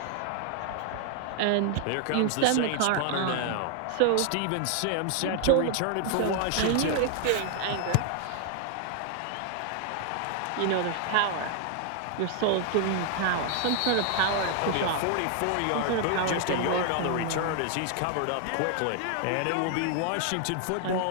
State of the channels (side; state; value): both; different; correlation 0.00